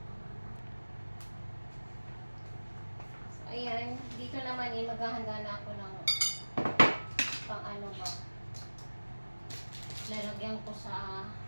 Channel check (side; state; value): both; inverted; correlation -1.00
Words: So, ayan. Dito naman maghahanda na ako ng pang ano ba. Lalagyan ko sa